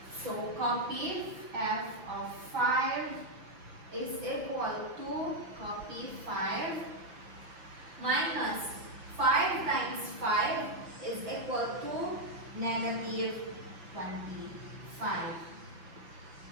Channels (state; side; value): late; left; 5.9 ms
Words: So, copy f of 5 is equal to, copy 5, minus 5 times 5 is equal to negative 25.